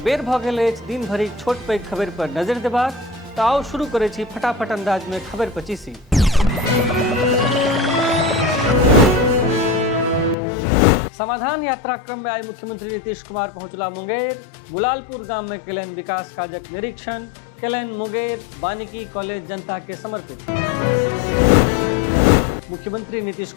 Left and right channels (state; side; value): drops out; right; at 10.4 s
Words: बेर भऽ गेल अछि दिन भरिक छोट पैघ खबर पर नजरि देबाक, तऽ आओ शुरू करै छी फटाफट अंदाज में खबर पचीसी। समाधान यात्रा क्रम में आई मुख्यमंत्री नीतीश कुमार पहुंचला मुंगेर। गुलालपुर गाम में केलनि विकास काजक निरीक्षण, केलनि मुंगेर वानिकी कॉलेज जनता के समर्पित। मुख्यमंत्री नीतीश